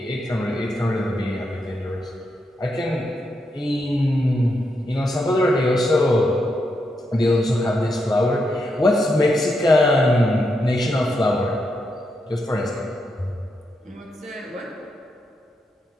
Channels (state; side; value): normal; both; correlation 0.83